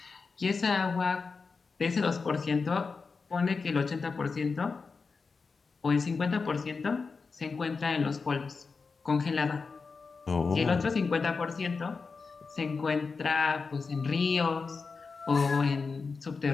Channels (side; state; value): right; quieter; 4.7 dB